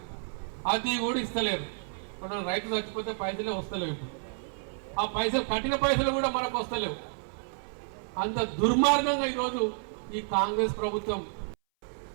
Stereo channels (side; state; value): left; silent; 58 dB below the other